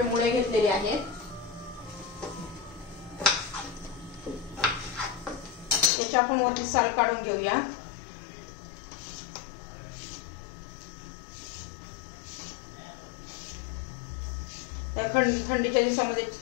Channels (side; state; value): right; drops out; at 5.9 s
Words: मुळे घेतलेले आहेत. याची आपण वरची साल काढून घेऊया. या थंडीच्या दिवसामध्ये